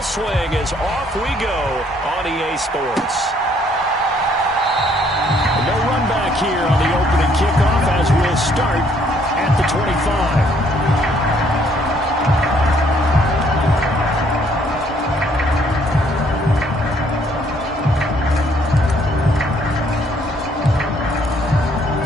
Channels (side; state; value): both; normal; correlation 0.65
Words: swing as off we go on EA Sports. No run back here on the opening kickoff as we'll start at the 25.